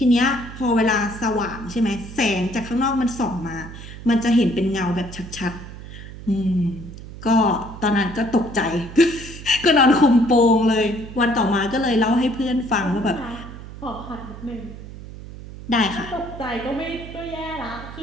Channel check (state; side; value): noise; right; hum, 13 dB below the sound